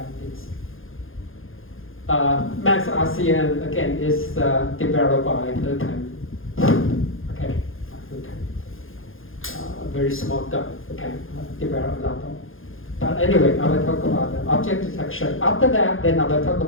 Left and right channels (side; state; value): right; late; 0.59 ms